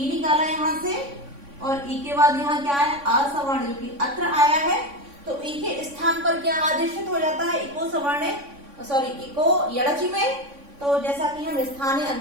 निकाला यहाँ से, और ई के बाद यहाँ क्या है, असवर्ण, जो कि अत्र आया है। तो ई के स्थान पर क्या आदेशित हो जाता है, इको सवर्ण, सॉरी इको यड़ची में। तो जैसा कि हम स्थानीय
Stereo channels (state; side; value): late; left; 3.6 ms